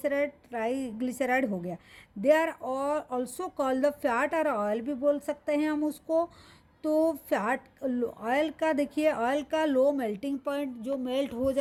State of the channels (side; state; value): both; identical; correlation 1.00